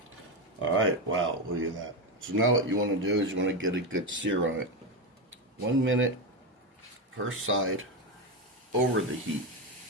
Alright, wow, look at that. So now what you want to do is you want to get a good sear on it. 1 minute per side over the heat.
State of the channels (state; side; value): normal; both; correlation 0.11